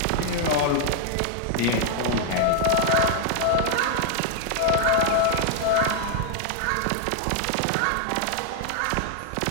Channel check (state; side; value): different; both; correlation 0.00